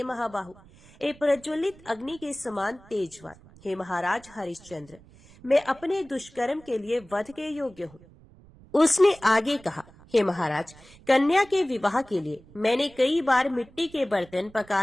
महाबाहु, एक प्रज्वलित अग्नि के समान तेजवान, हे महाराज हरिश्चंद्र, मैं अपने दुष्कर्म के लिए वध के योग्य हूँ। उसने आगे कहा, हे महाराज, कन्या के विवाह के लिए मैंने कई बार मिट्टी के बर्तन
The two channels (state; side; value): noise; right; rumble, 24 dB below the sound